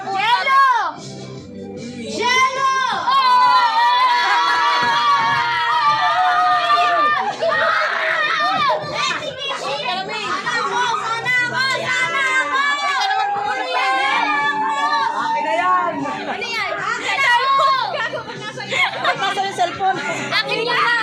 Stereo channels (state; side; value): identical; both; correlation 1.00